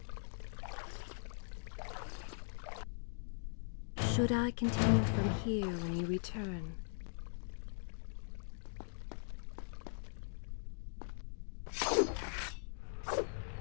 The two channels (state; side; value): silent; right; digital silence